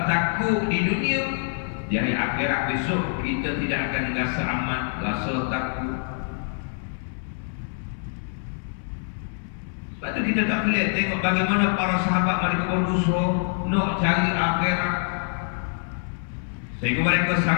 takut di dunia, di hari akhirat besok kita tidak akan rasa aman, rasa takut. Sebab tu kita tak boleh tengok bagaimana para sahabat mereka berusaha nak cari akhirat, sehingga mereka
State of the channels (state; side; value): silent; right; 62 dB below the other